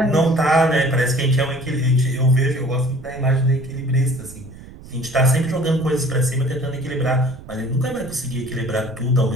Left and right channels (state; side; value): noise; right; rumble, 18 dB below the sound